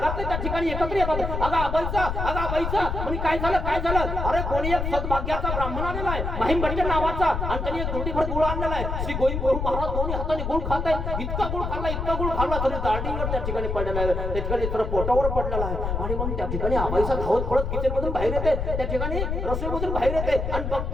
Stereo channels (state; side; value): noise; left; rumble, 2 dB below the sound